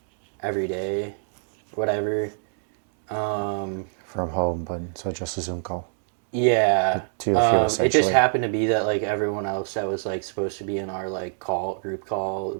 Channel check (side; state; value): left; silent; digital silence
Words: every day, whatever. From home, but so just a Zoom call. Yeah. Two of you, It just essentially. happened to be that like everyone else that was like supposed to be in our like group call